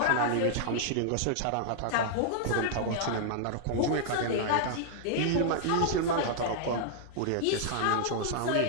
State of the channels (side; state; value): both; different; correlation -0.01